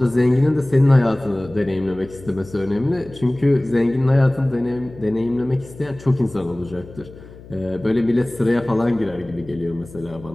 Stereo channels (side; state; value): left; noise; hum, 19 dB below the sound